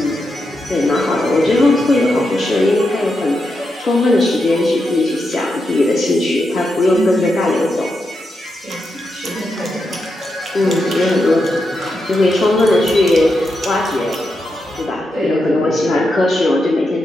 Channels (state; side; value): normal; both; correlation 0.85